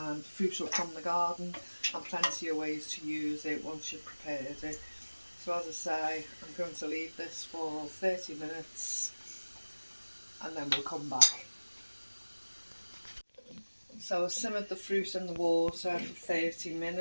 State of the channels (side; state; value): both; inverted; correlation -1.00